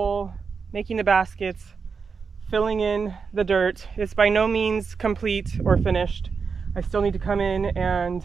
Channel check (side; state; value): left; quieter; 5.4 dB